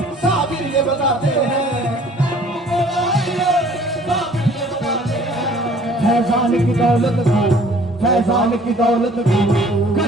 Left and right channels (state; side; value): normal; both; correlation 0.54